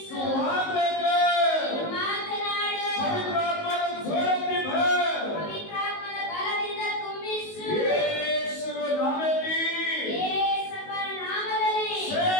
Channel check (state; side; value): late; right; 19 ms